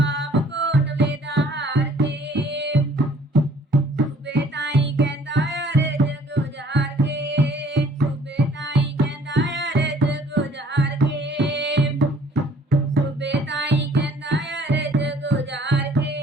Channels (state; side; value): normal; both; correlation 0.57